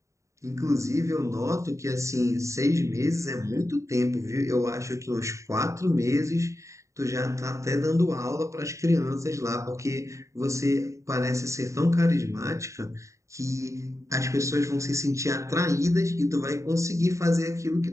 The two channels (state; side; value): late; left; 0.15 ms